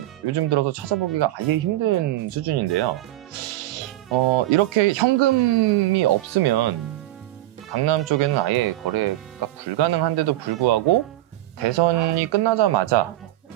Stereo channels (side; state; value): left; quieter; 15.5 dB